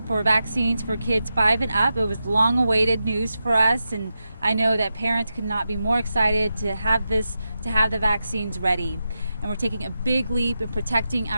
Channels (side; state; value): both; inverted; correlation -0.89